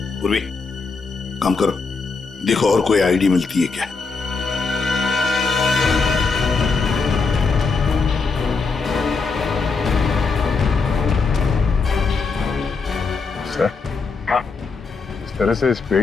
पूर्वी, काम करो, देखो और कोई आईडी मिलती है क्या। सर, इस तरह से इस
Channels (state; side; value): quieter; right; 4.5 dB